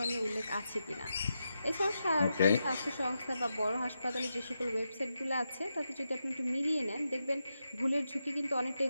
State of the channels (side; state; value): both; inverted; correlation -0.87